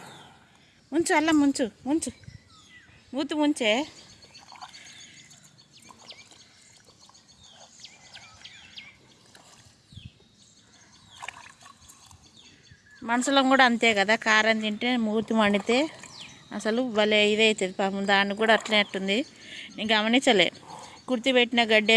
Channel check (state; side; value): identical; both; correlation 1.00